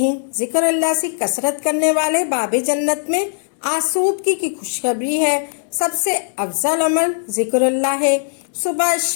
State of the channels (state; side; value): silent; right; digital silence